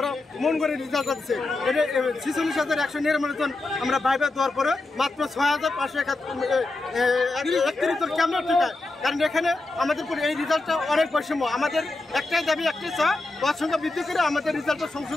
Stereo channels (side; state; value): right; quieter; 3.1 dB